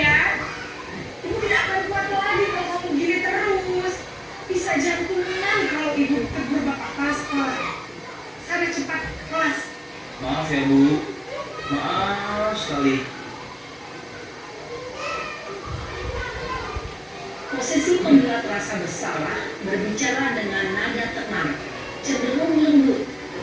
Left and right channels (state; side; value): identical; both; correlation 1.00